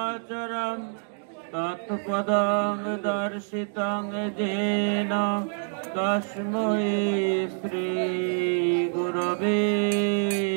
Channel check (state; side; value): silent; left; 57 dB below the other